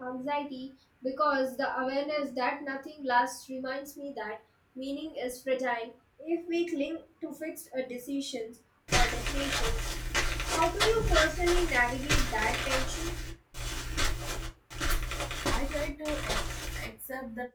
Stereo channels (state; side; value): identical; both; correlation 1.00